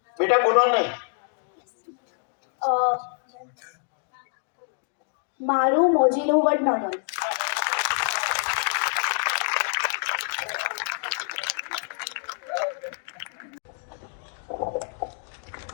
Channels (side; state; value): right; silent; 57 dB below the other